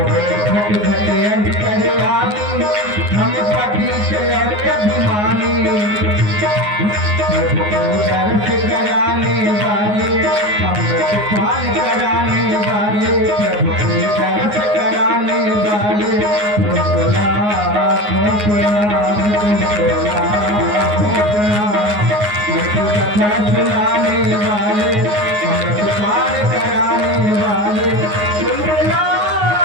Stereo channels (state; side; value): late; left; 9.6 ms